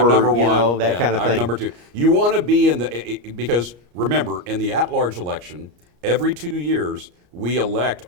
or number one. you know, that Yeah, kind of I'm thing. number two. You want to be in because remember, in the at-large election, every 2 years, we elect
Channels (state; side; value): late; left; 34 ms